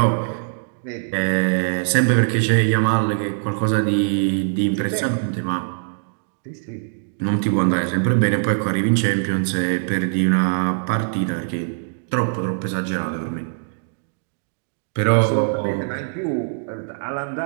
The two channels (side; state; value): left; silent; digital silence